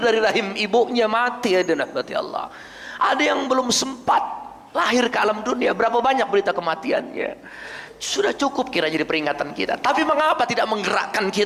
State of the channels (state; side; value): identical; both; correlation 1.00